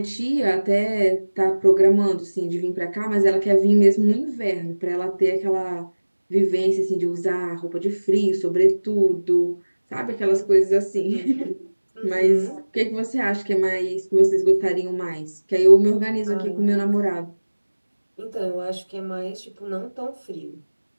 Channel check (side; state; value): both; inverted; correlation -1.00